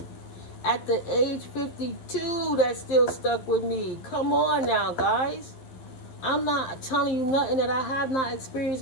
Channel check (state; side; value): late; right; 11 ms